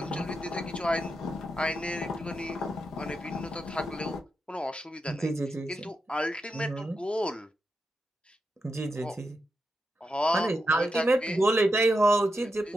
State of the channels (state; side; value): normal; both; correlation 0.86